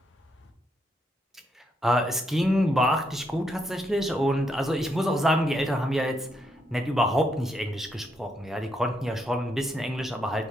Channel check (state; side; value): normal; both; correlation 0.77